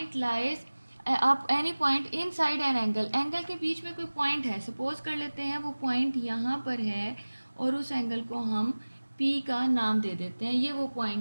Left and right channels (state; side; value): inverted; both; correlation -1.00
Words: लाइज, आप any point in side an angle, angle के बीच में कोई पॉइंट है, सपोज कर लेते हैं वो पॉइंट यहाँ पर है और उस एंगल को हम पी का नाम दे देते हैं, ये वो